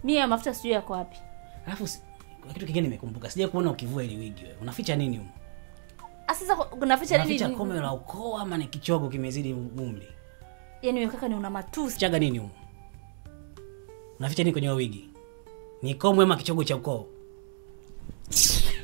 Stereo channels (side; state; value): left; silent; digital silence